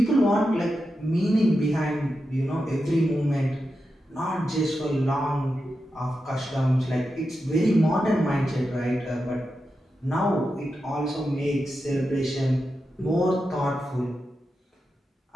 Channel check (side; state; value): both; normal; correlation 0.89